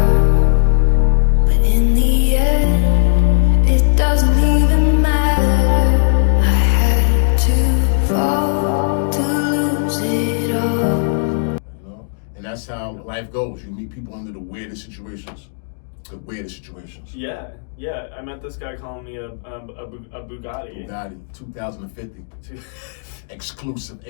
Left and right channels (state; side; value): silent; right; digital silence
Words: but in the end, it doesn't even matter. I had to fall to lose it all. You know, and that's how life goes. You meet people under the weirdest situations. The weirdest situations. Yeah. I met this guy calling me a Bugatti. Bugatti, 2050. Exclusive,